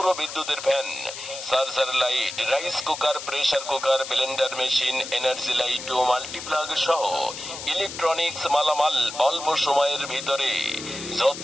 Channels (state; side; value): noise; left; hiss, 10 dB below the sound